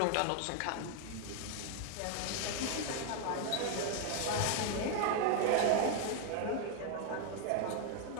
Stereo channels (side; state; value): both; different; correlation 0.01